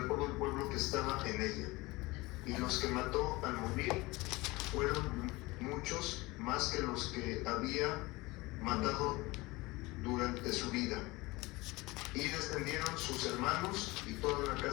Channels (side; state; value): right; quieter; 22.0 dB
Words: todo el pueblo que estaba en ella. Y los que mató al morir fueron muchos, más que los que había matado durante su vida. Y descendieron sus hermanos y toda la